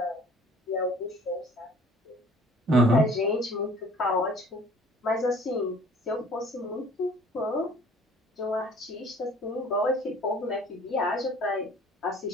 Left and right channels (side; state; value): both; normal; correlation 0.52